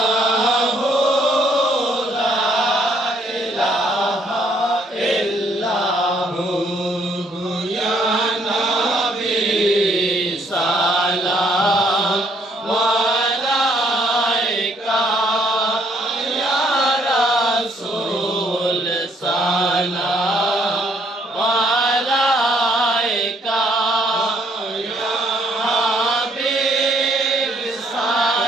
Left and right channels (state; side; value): normal; both; correlation 0.67